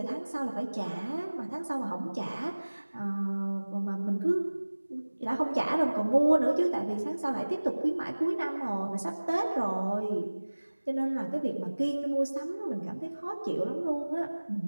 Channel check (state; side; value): inverted; both; correlation -1.00